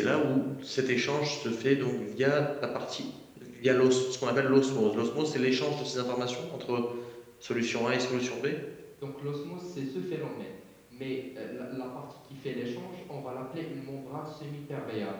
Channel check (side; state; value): both; identical; correlation 1.00